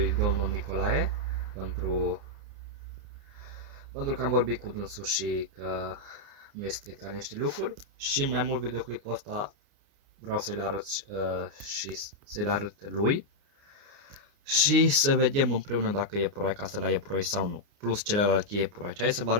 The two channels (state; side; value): late; left; 29 ms